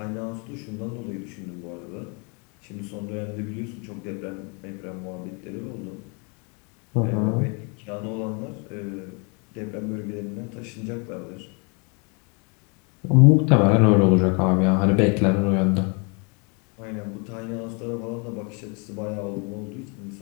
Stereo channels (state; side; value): quieter; right; 34.0 dB